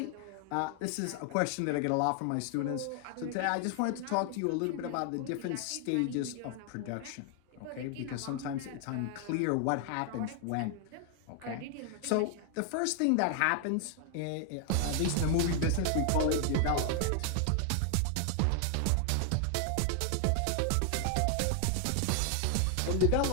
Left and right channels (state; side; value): different; both; correlation 0.00